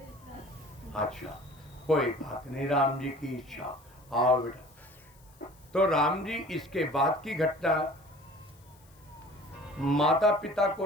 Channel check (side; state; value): left; noise; hiss, 29 dB below the sound